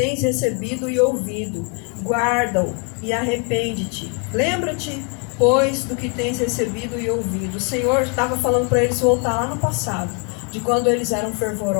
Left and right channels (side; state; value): right; quieter; 34.2 dB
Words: recebido e ouvido, guarda-o e arrepende-te. Lembra-te, pois, do que tens recebido e ouvido. O Senhor estava falando para eles voltar lá no passado, de quando eles eram